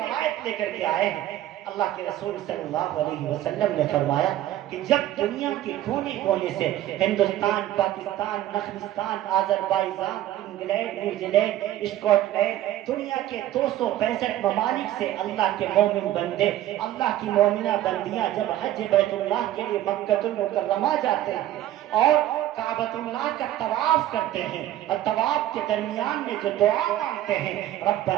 لے کر کے آئے ہیں۔ اللہ کے رسول صلی اللہ علیہ وسلم نے فرمایا کہ جب دنیا کے کونے کونے سے ہندوستان، پاکستان، نخلستان، Azerbaijan, England, New Zealand, Scotland, دنیا کے 265 ممالک سے اللہ کے مومن بندے، اللہ کی مومنہ بندیاں جب حج بیت اللہ کے لیے مکہ المکرمہ جاتے ہیں اور کعبۃ اللہ کا طواف کرتے ہیں، اور طواف کے درمیان میں جو دعا مانگتے ہیں،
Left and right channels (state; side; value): quieter; left; 13.4 dB